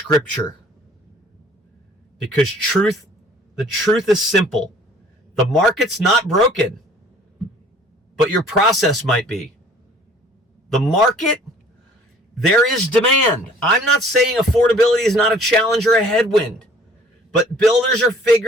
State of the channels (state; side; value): normal; both; correlation 0.53